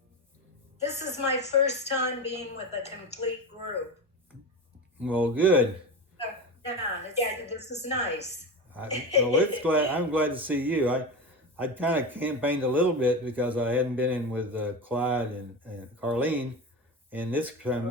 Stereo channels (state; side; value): normal; both; correlation 0.24